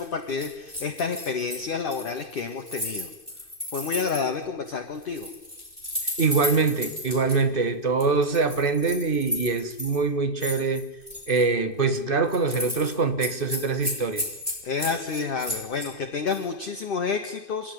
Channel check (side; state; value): right; late; 2.6 ms